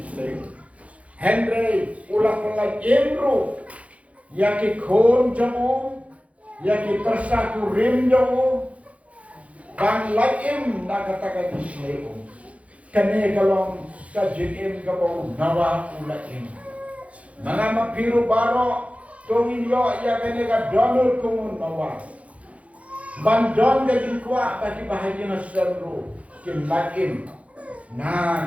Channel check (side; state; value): left; late; 0.065 ms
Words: slave Henry ula pelak imru yaki khon jomu yaki persaku rim jomu Bang laim nakatakan Islam kani kalong kajim kabau nawa ulaim mga mapiru baro tongin yo ya kani ka Donald kumun nawa bandon ka dinkwa bagi bahagia na seru kin laim na